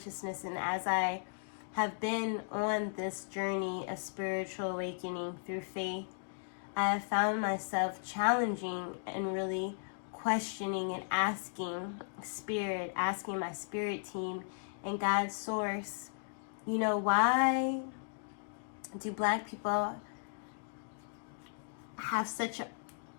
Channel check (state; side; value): silent; right; digital silence